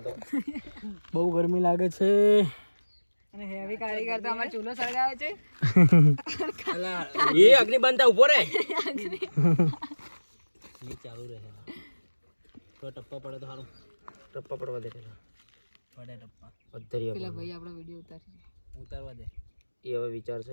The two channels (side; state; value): both; inverted; correlation -1.00